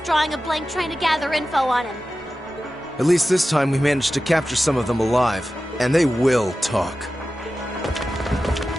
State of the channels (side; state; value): both; normal; correlation 0.94